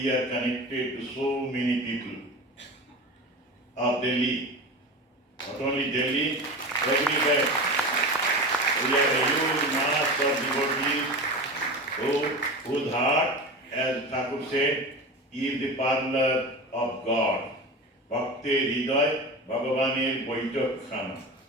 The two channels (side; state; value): both; normal; correlation 0.29